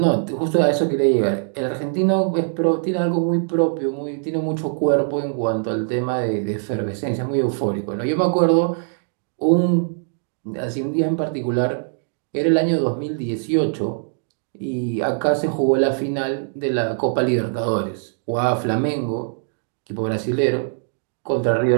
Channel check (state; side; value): silent; left; digital silence